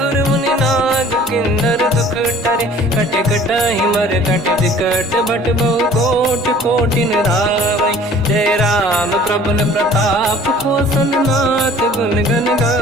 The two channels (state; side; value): normal; both; correlation 0.50